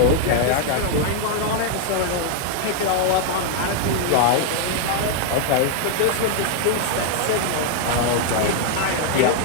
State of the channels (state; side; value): different; both; correlation 0.00